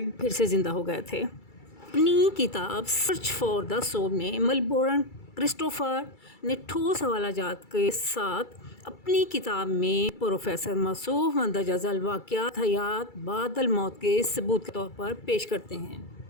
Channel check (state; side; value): late; right; 2.3 ms